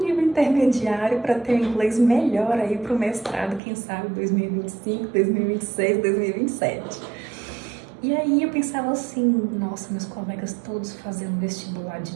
nível intermediário para ter um inglês melhor aí para o mestrado, quem sabe 2025, 2026, 2027. E aí eu pensava assim, nossa, meus colegas todos fazendo vestibular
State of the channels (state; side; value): drops out; left; at 3.6 s